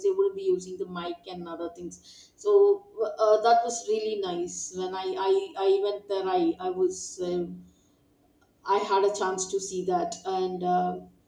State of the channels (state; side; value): identical; both; correlation 1.00